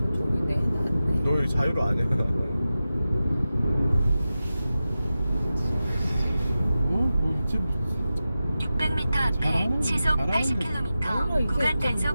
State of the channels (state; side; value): inverted; both; correlation -0.93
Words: 종이네 해놨네. 너 여기 자유로 아니야. 뭐 있지? 600m 앞에 잘하는- 시속 잘하는데. 80km 이게 구간 좀